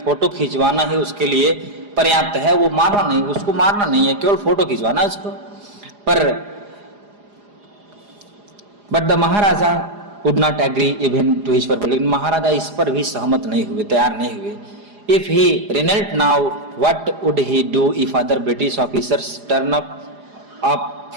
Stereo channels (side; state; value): left; late; 4.9 ms